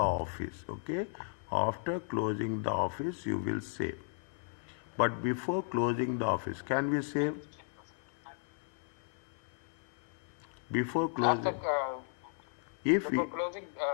okay? After closing the office, you will save. But before closing the office, can we save? Before closing, Before closing,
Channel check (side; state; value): right; silent; 54 dB below the other